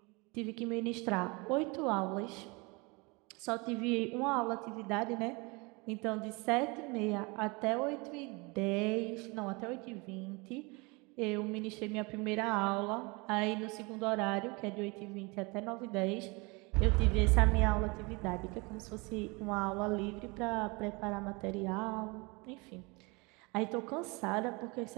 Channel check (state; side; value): quieter; left; 27.6 dB